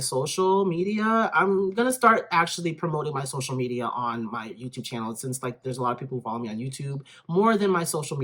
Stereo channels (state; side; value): identical; both; correlation 1.00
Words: media. I'm going to start actually promoting my social media on my YouTube channel, since like there's a lot of people who follow me on YouTube more than my social